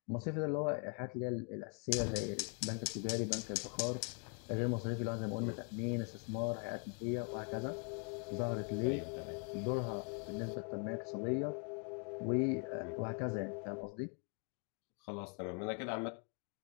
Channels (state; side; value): quieter; right; 37.4 dB